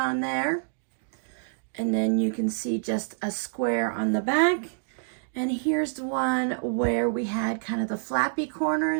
there. And then you can see just a square on the back. And here's the one where we had kind of the flappy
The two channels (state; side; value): silent; left; digital silence